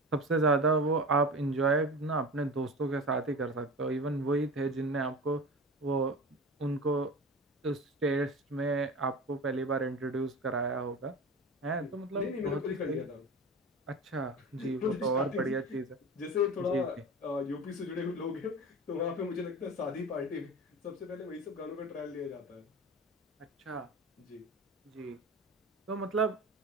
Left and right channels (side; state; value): both; normal; correlation 0.31